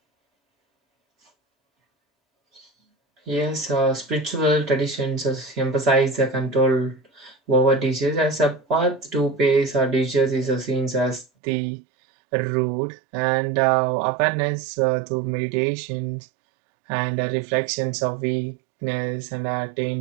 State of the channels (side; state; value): left; drops out; at 11.2 s